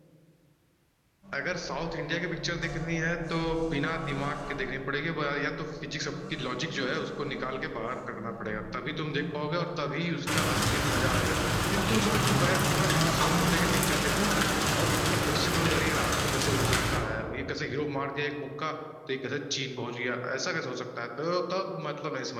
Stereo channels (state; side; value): identical; both; correlation 1.00